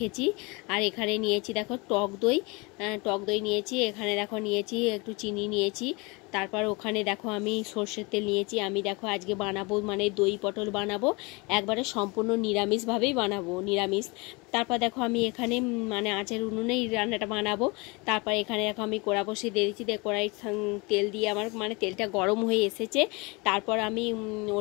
আর এখানে নিয়েছি দেখো টক দই নিয়েছি। এখানে দেখো নিয়েছি একটু চিনি নিয়েছি। তারপর ওখানে দেখো আমি সর্ষের তেল নিয়েছি। আমি দেখো আজকে বানাবো মানে দই পটল বানাবো, একবারে সম্পূর্ণ নিরামিষভাবেই বানাবো, নিরামিষ। তারপর দেখো আমি এখানে মানে আঁচের উনুনেই রান্নাটা বানাবো। তারপর এখানে দেখো আমি কড়া বসিয়ে দিয়েছি, কড়াই তেল দিয়ে আমার মানে তেলটা গরম হয়ে এসেছে। তারপর আমি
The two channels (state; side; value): quieter; right; 27.5 dB